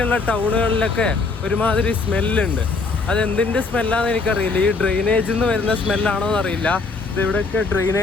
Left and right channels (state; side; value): quieter; right; 4.0 dB